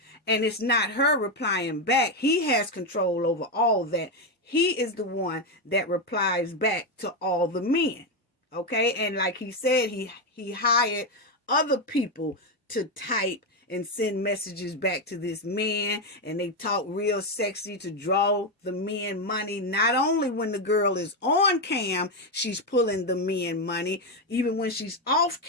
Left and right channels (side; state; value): both; normal; correlation 0.07